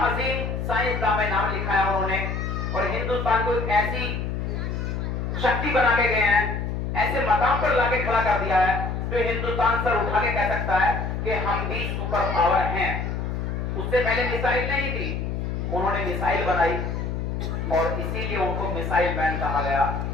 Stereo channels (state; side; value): noise; left; hum, 3 dB below the sound